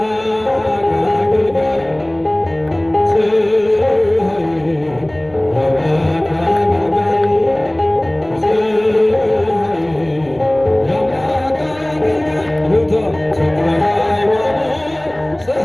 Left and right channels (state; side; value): noise; left; rumble, 27 dB below the sound